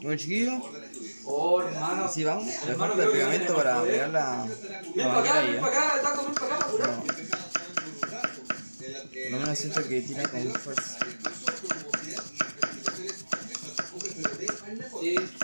Bueno, chiquillos, así vamos. Le falta el pegamento para pegar la manguera ahí, Por lo menos siento que tira con fuerza. Sí,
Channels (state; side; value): inverted; both; correlation -1.00